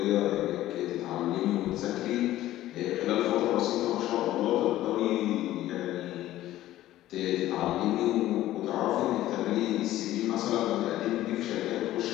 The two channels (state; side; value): quieter; right; 14.5 dB